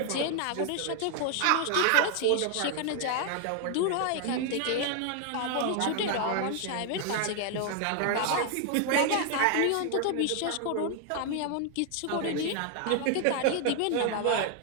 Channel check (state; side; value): different; both; correlation 0.00